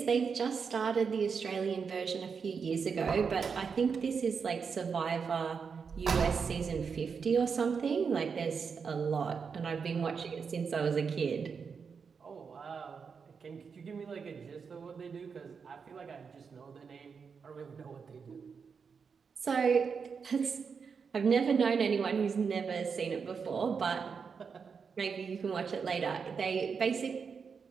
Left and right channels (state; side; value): quieter; left; 5.9 dB